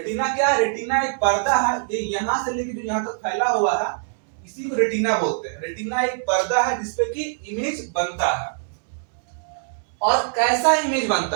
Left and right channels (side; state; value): left; silent; digital silence